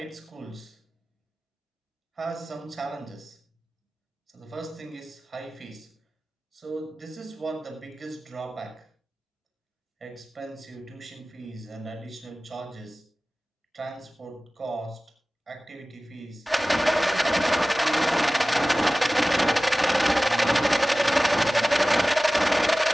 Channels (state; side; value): normal; both; correlation 0.97